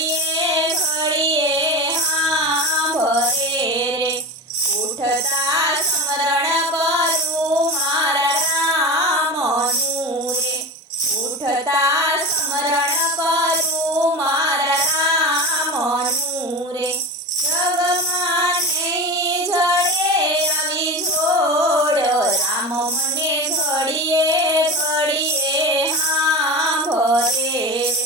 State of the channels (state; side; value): normal; both; correlation 0.27